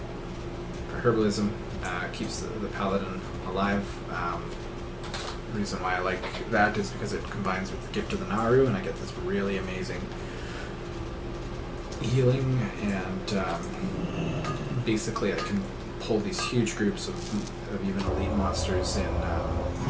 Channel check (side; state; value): both; identical; correlation 1.00